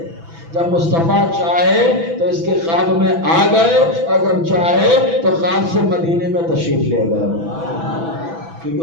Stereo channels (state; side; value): late; left; 6.0 ms